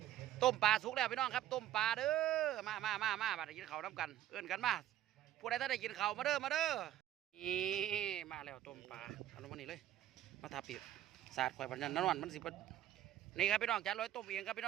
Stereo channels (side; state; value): left; quieter; 12.4 dB